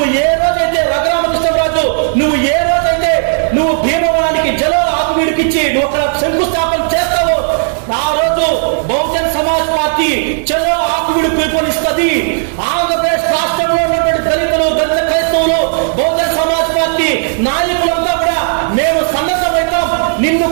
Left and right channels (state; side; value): silent; left; digital silence